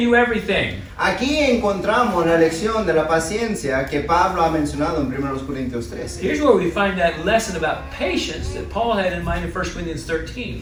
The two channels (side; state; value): both; identical; correlation 1.00